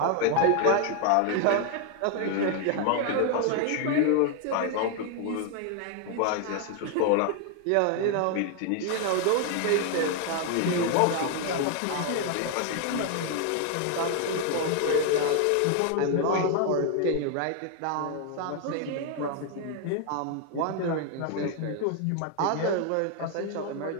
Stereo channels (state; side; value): different; both; correlation 0.00